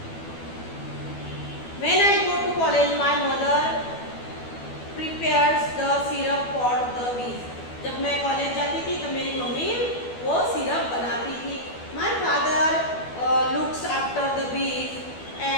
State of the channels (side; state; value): right; late; 12 ms